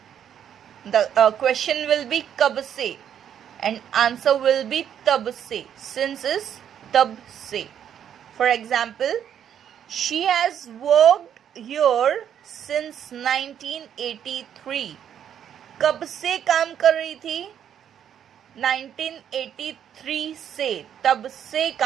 The question will be कब से and answer will be तब से. Since is तब से. For example, she has worked here since 1983. कब से काम कर रही थी? 1983 से, तब से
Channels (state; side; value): quieter; left; 9.3 dB